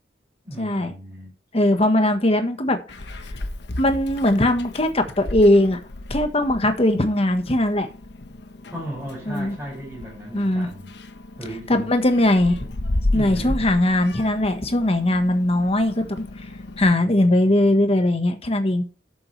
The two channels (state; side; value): normal; both; correlation 0.72